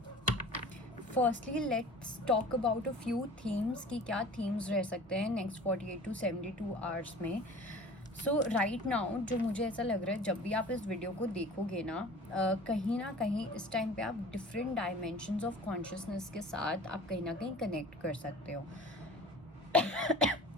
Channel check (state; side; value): normal; both; correlation 0.42